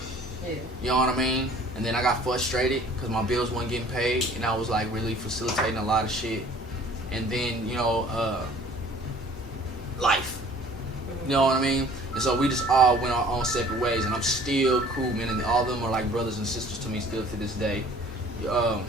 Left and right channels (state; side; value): normal; both; correlation 0.51